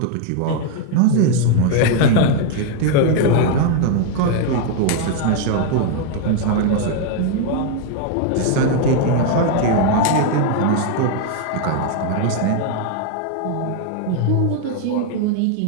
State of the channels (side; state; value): both; different; correlation 0.00